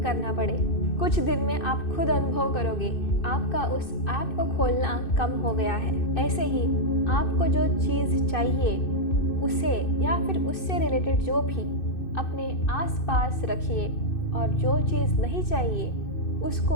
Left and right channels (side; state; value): right; late; 2.6 ms